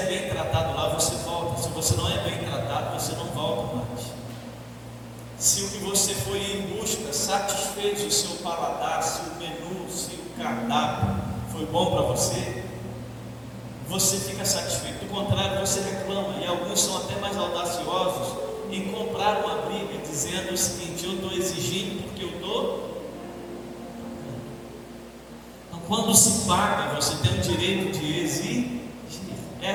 bem tratado lá, você volta. Se você não é bem tratado, você não volta mais. Se o que você foi em busca satisfez o seu paladar, se o menu, se o cardápio foi bom para você, você fica satisfeito. Do contrário, você reclama. E alguns são até mais audaciosos em comprar uma briga, dizendo o seguinte: eu estou exigindo porque eu estou. Então, quando se paga, você tem o direito de exigir.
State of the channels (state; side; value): identical; both; correlation 1.00